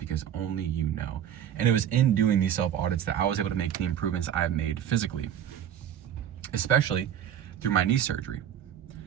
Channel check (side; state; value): left; quieter; 9.9 dB